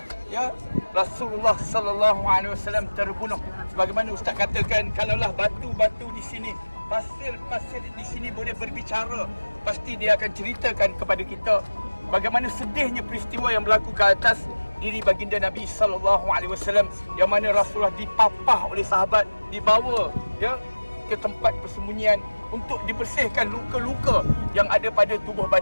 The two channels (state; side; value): inverted; both; correlation -1.00